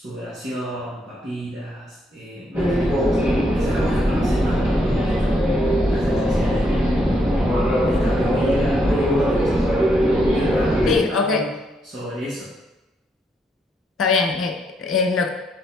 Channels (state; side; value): normal; both; correlation 0.76